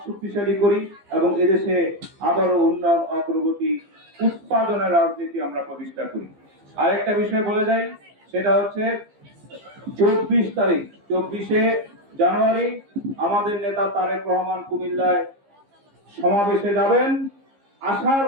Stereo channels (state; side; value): late; left; 15 ms